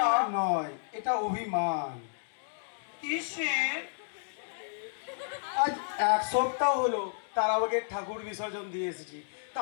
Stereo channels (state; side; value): silent; right; digital silence